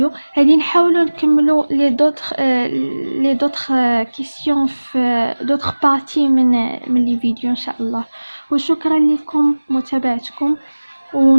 هذه نحاولوا نكملوا لي دوطخ كيسيون في دوطخ بارتي من لي فيديو ان شاء الله. وشكرا لكم متابعتكم،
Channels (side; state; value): both; inverted; correlation -1.00